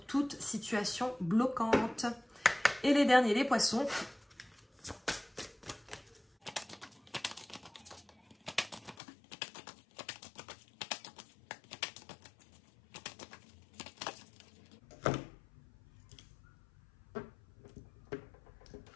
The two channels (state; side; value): drops out; right; at 9.0 s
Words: situation bloquante. Et les derniers, les poissons.